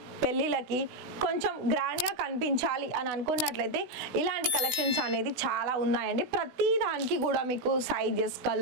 పెళ్ళిళ్ళకి కొంచెం గ్రాండ్గా కనిపించాలి అని అనుకున్నట్లయితే ఇలాంటి కలెక్షన్స్ అనేది చాలా ఉన్నాయండి. ప్రతి దానికి కూడా మీకు సైజెస్,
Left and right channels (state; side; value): late; left; 16 ms